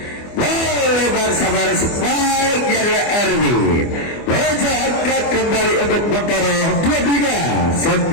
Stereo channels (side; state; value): right; late; 24 ms